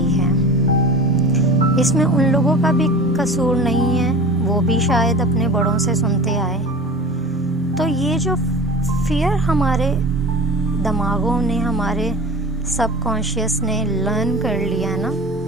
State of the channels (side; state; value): both; normal; correlation 0.36